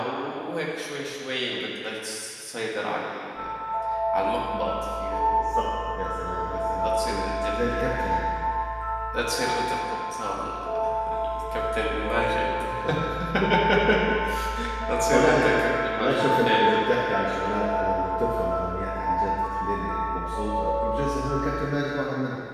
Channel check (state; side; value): identical; both; correlation 1.00